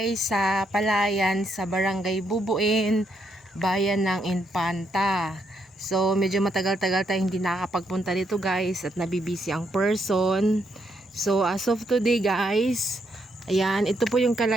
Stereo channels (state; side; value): normal; both; correlation 0.77